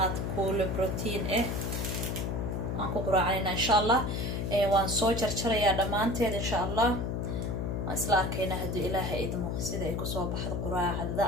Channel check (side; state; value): left; noise; hum, 1 dB below the sound